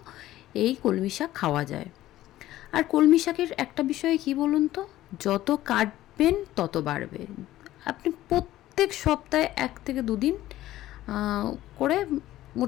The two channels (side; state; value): right; quieter; 14.8 dB